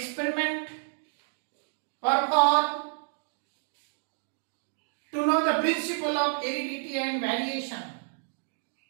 performed to know the principle of heredity and variation.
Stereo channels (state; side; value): silent; left; digital silence